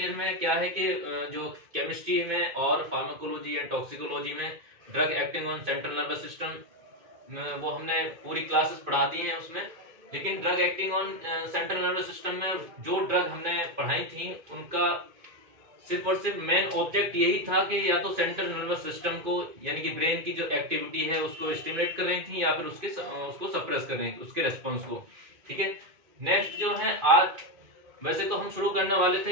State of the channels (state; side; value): late; left; 2.2 ms